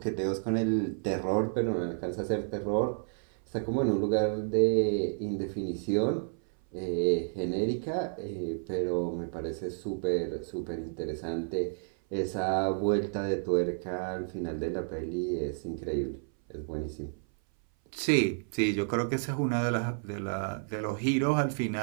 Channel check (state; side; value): silent; left; 57 dB below the other